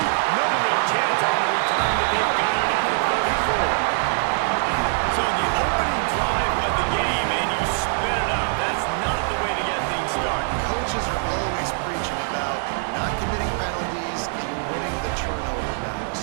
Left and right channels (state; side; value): silent; left; 60 dB below the other